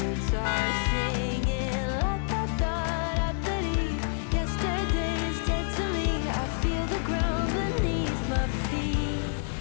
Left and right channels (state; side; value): silent; right; digital silence